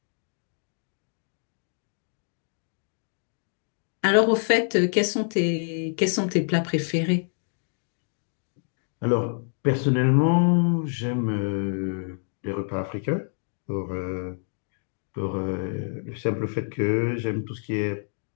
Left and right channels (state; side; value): silent; right; 60 dB below the other